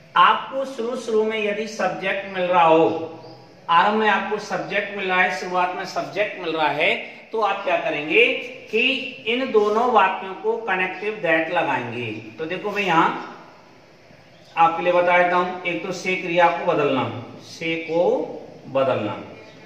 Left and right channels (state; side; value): identical; both; correlation 1.00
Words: आपको शुरू में यदि सब्जेक्ट मिल रहा हो, आरंभ में आपको सब्जेक्ट मिल रहा है, शुरुआत में सब्जेक्ट मिल रहा है, तो आप क्या करेंगे कि इन दोनों वाक्यों को कनेक्टिव दैट लगाएंगे। तो देखो मैं यहां आपके लिए बता देता हूं, एक तो से क्रिया को बदलना, से को बदलना,